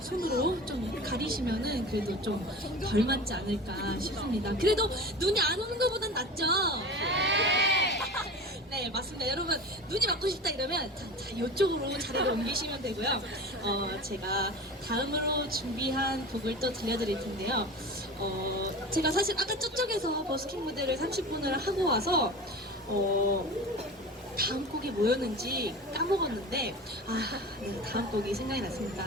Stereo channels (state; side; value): normal; both; correlation 0.33